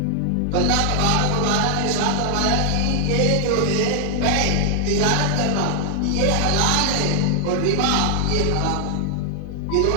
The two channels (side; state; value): both; different; correlation 0.00